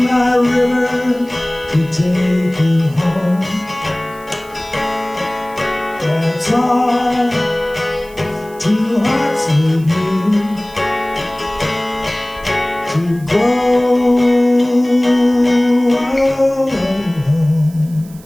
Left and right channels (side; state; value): right; noise; hiss, 24 dB below the sound